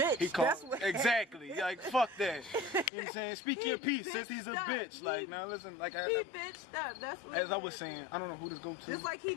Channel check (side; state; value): right; drops out; at 2.9 s